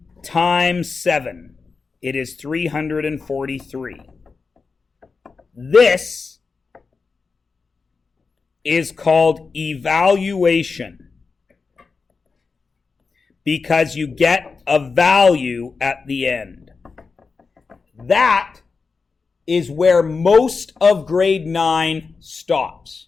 times 7. It is 343. This is called evaluation. Because you get a value at the end. That is where most of grade 9 stops.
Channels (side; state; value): right; quieter; 4.7 dB